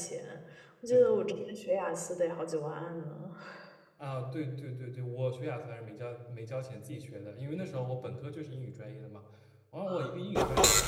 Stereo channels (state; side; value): identical; both; correlation 1.00